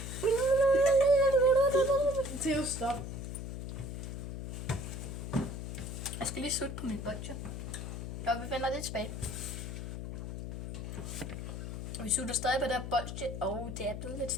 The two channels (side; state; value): left; noise; hum, 6 dB below the sound